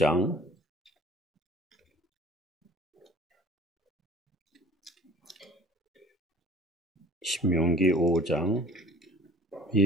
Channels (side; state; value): both; normal; correlation 0.47